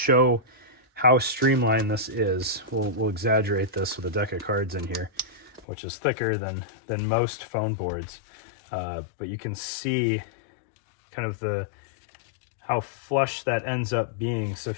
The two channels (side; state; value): right; drops out; at 5.7 s